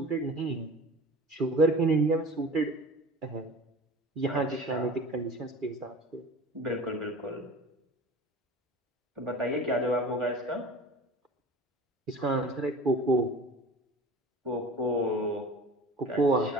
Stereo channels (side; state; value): both; normal; correlation 0.39